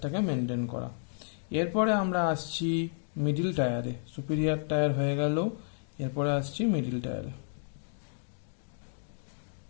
মেনটেন করা। এরপরে আমরা আসছি মিডিল টায়ারে। সুপিরিয়ার টায়ার হয়ে গেল, এরপরে আসছি মিডিল টায়ারে।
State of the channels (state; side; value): silent; right; digital silence